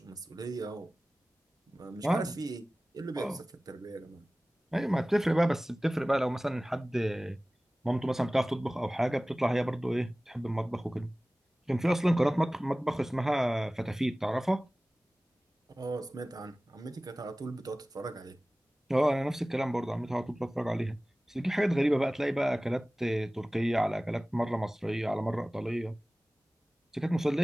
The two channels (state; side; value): normal; both; correlation 0.98